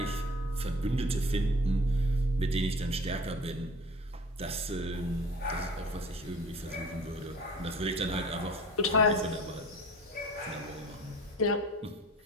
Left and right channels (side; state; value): both; normal; correlation 0.44